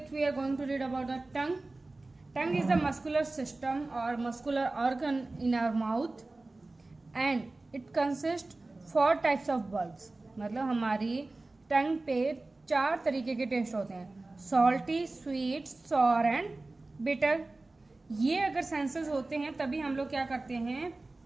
we are going to read about the tongue. Tongue is the muscular system और muscular organ in our mouth and it consist 4 types of bulbs. मतलब हमारी टंग पे 4 तरीके के taste होते हैं, salty, sweet, sour and bitter. ये अगर सेंसेस होते हैं तभी हम लोग क्या करते हैं,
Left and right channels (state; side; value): quieter; left; 3.1 dB